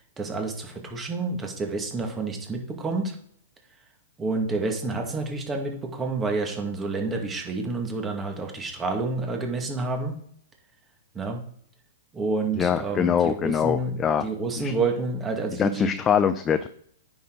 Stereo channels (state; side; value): normal; both; correlation 0.45